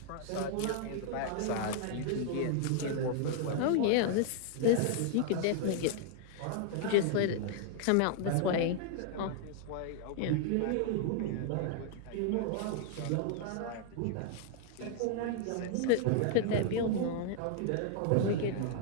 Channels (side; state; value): both; different; correlation 0.00